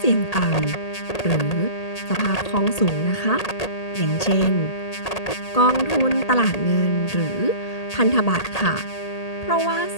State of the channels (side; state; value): right; late; 1.8 ms